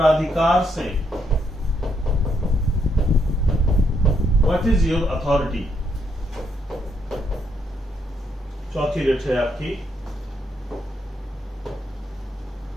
से, व्हाट इज योर अथॉरिटी। चौथी रिट है आपकी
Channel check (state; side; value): normal; both; correlation 0.75